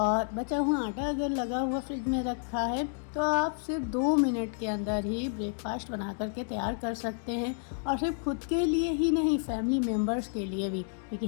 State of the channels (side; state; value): right; silent; 58 dB below the other